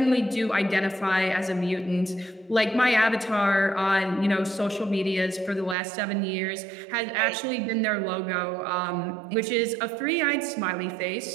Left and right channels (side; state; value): left; drops out; at 5.8 s